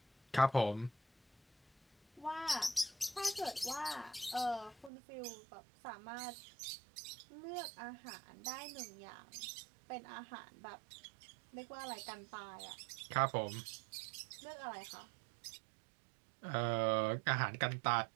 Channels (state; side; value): drops out; left; at 4.9 s